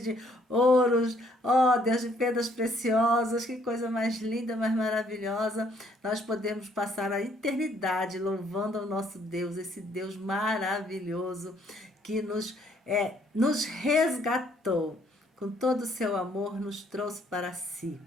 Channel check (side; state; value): both; normal; correlation 0.65